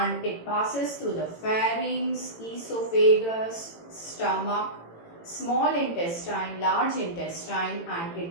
it passes through the pharynx, esophagus, stomach, small intestine, large intestine, and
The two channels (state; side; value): late; right; 18 ms